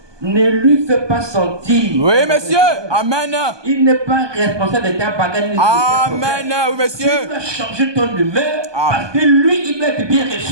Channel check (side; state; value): left; late; 1.2 ms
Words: ne lui fais pas sentir. Oui, monsieur. Amen. Il n'est pas responsable de ta bagarre. Amen. Oui, Tu monsieur. dois changer ton humeur Amen. parce que lui, il doit être bien